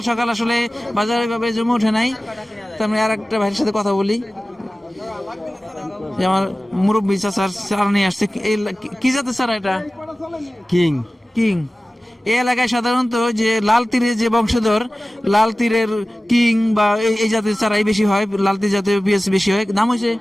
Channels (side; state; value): both; normal; correlation 0.96